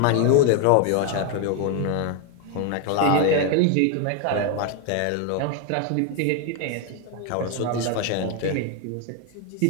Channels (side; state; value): both; different; correlation 0.01